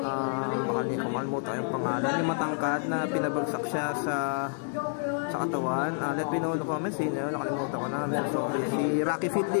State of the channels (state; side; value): silent; right; 59 dB below the other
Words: makalimutan yung pangalan, yung matangkad na pinabagsak siya sa katawan. Let me know in the comments, nakalimutan ko na. Sorry, si Rocky